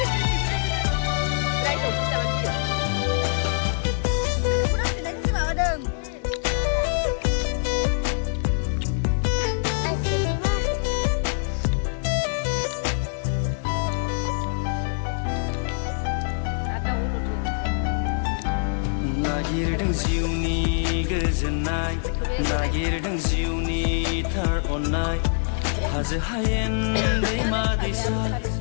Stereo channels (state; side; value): silent; right; digital silence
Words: नागिरदों जिउनि गोजोननाय नागिरदों जिउनि थार अननाय हाजो हायेन दैमा दैसा